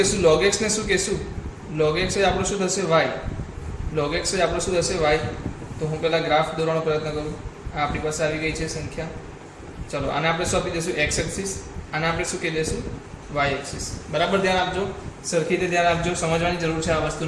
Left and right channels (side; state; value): both; identical; correlation 1.00